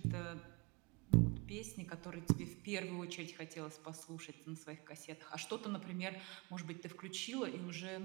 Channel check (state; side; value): quieter; left; 29.6 dB